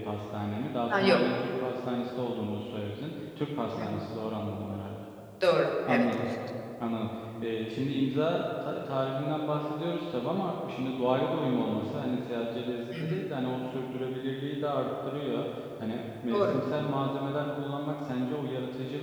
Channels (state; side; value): identical; both; correlation 1.00